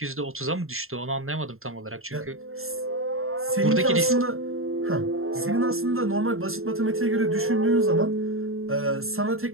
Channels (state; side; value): late; left; 0.61 ms